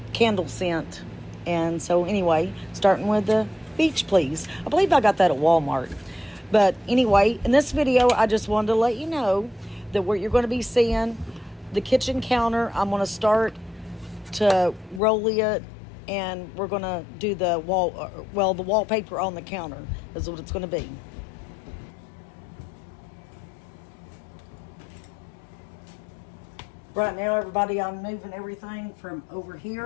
candle scent. And so anyway, starting with the beach please. I believe I got that at Walmart. But anyway, in this video, I just wanted to let you know that what you're going to be seeing, the kitchen counter, I'm going to start to roll it, and we're going to do the the wallpaper on the counter is what it's going to be. Right now, everybody, I'm moving everything from over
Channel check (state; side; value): drops out; right; at 15.0 s